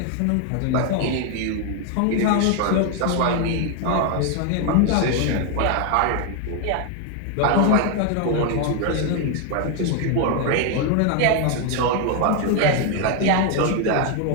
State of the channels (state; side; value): different; both; correlation 0.01